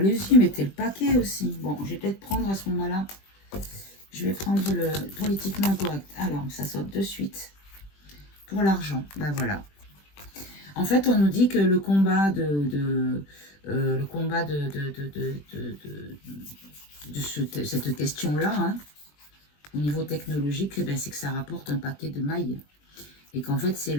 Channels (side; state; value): right; late; 20 ms